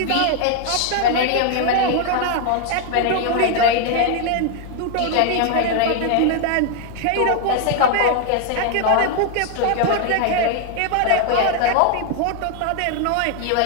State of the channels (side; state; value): both; different; correlation 0.00